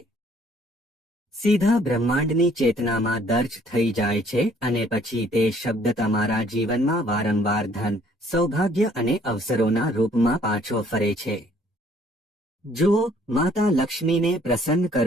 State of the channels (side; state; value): both; normal; correlation 0.61